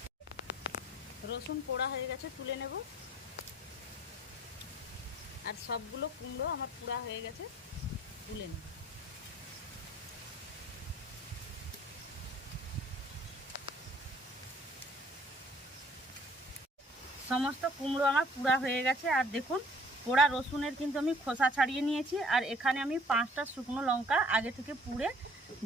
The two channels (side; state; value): both; normal; correlation 0.57